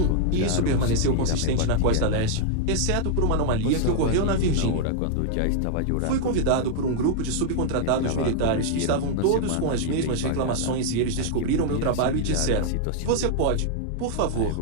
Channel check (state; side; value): different; both; correlation -0.01